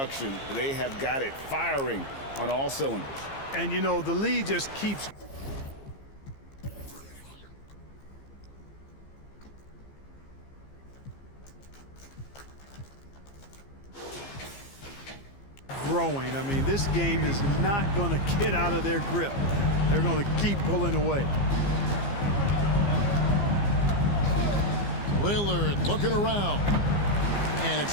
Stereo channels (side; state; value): right; late; 15 ms